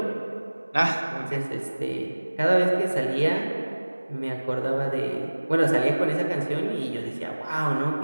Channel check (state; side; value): inverted; both; correlation -1.00